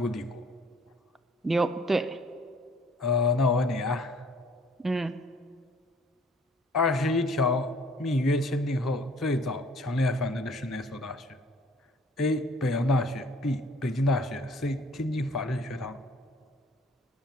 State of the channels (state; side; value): normal; both; correlation 0.56